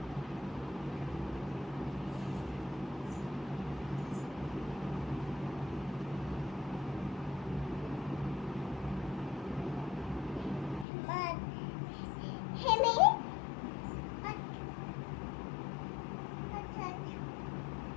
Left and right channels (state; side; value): drops out; right; at 10.9 s